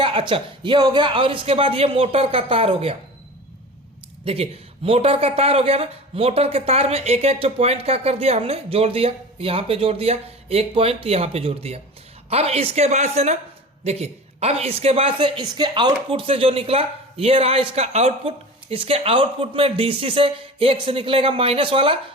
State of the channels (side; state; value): both; normal; correlation 0.35